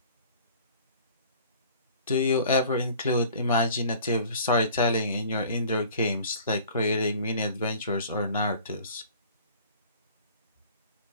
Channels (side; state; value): both; inverted; correlation -0.49